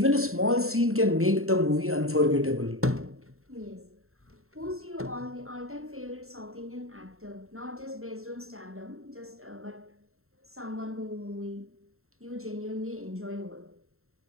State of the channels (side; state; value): left; late; 0.62 ms